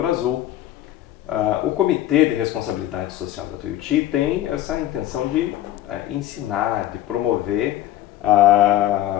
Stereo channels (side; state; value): right; quieter; 13.7 dB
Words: Azul. O Comitê de Responsabilidade Social da Tuiuti tem essa intenção de ensinar, de promover